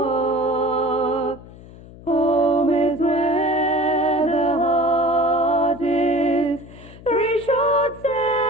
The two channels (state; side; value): noise; left; hum, 19 dB below the sound